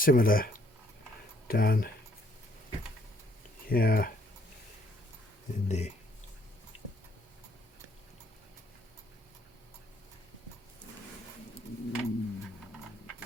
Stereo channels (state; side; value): normal; both; correlation 0.66